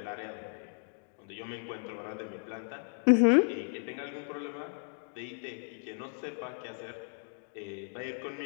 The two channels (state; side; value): silent; right; 55 dB below the other